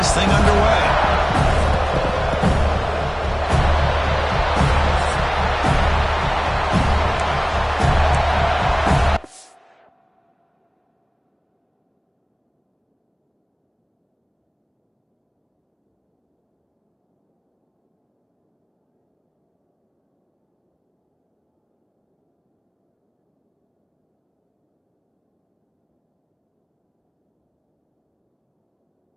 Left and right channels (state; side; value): identical; both; correlation 1.00